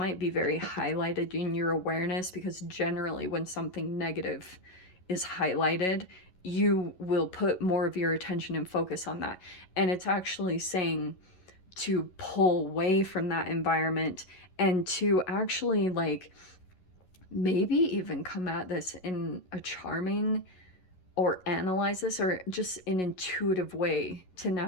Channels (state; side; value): late; right; 11 ms